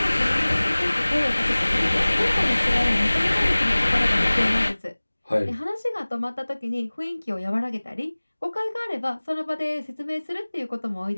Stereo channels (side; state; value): both; inverted; correlation -1.00